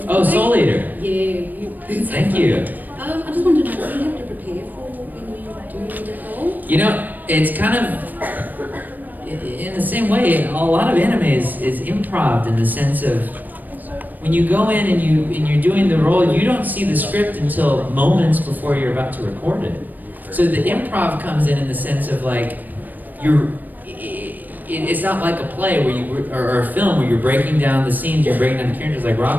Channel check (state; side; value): late; left; 0.086 ms